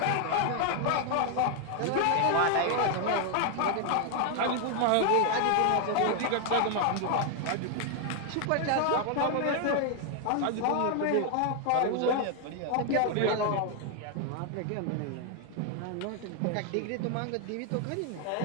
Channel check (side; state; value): both; different; correlation 0.00